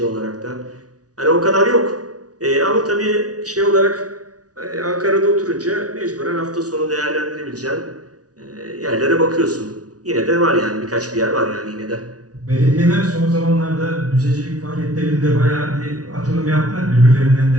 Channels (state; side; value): late; left; 0.68 ms